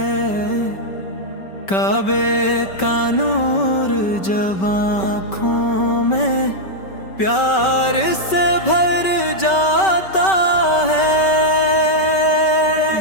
کعبے کا نور جب آنکھوں میں پیار سے بھر جاتا ہے،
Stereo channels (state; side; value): late; right; 5.2 ms